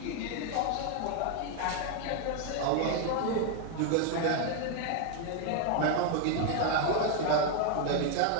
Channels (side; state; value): both; different; correlation 0.00